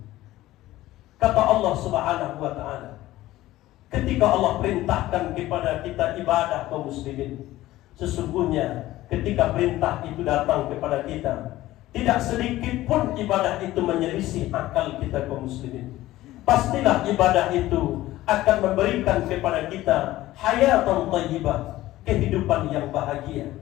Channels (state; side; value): quieter; right; 16.1 dB